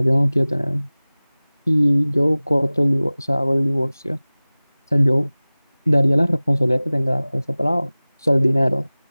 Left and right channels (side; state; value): both; inverted; correlation -0.99